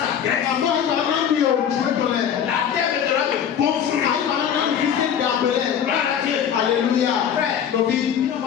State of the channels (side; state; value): right; quieter; 8.6 dB